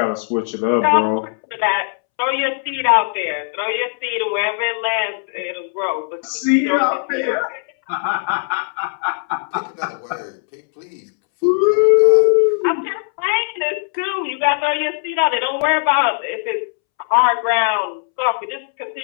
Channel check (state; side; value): silent; right; 67 dB below the other